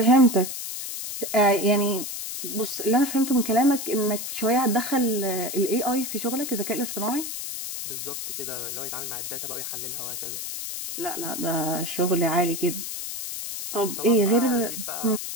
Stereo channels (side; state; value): left; noise; hiss, 6 dB below the sound